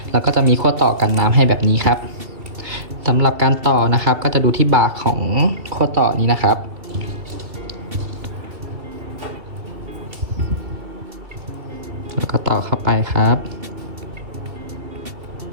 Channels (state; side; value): late; left; 2.7 ms